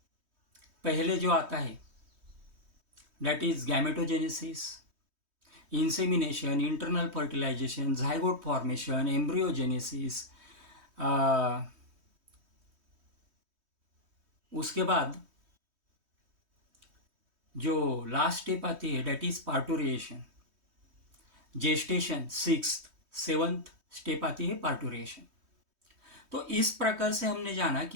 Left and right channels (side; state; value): left; late; 3.1 ms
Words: पहले जो आता है that is gametogenesis, insemination, internal fertilisation, zygote formation, embryogenesis. उसके बाद जो लास्ट स्टेप आती है that is parturition, gestation, 6th 7th step आती है पार्टुरिएशन। तो इस प्रकार से हमने जाना